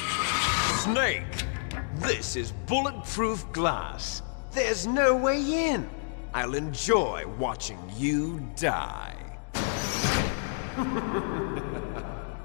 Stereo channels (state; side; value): silent; right; digital silence